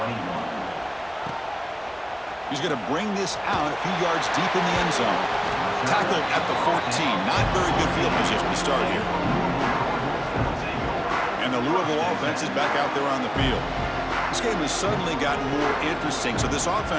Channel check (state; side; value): identical; both; correlation 1.00